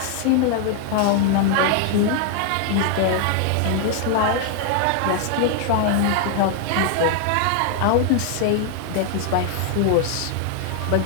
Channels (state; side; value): different; both; correlation 0.00